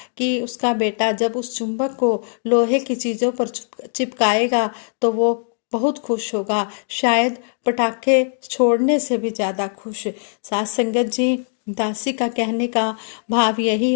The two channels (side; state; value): right; silent; digital silence